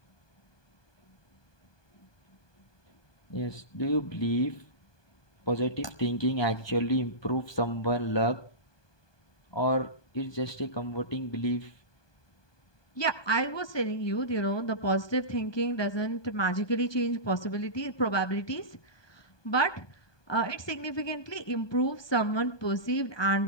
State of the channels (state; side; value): late; right; 1.2 ms